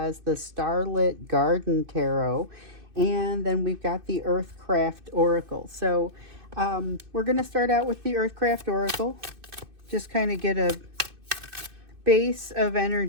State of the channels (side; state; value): left; late; 2.6 ms